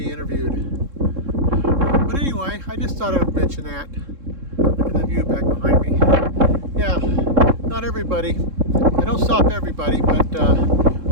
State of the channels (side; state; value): left; late; 3.7 ms